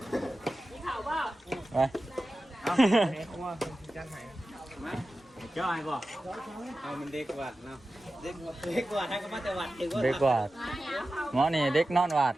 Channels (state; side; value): normal; both; correlation 0.94